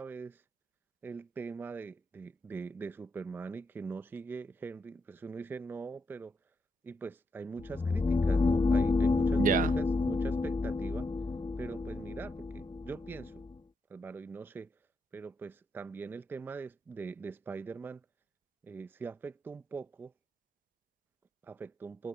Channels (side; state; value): both; normal; correlation 0.82